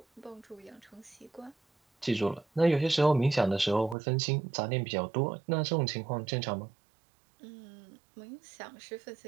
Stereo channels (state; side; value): drops out; left; at 4.0 s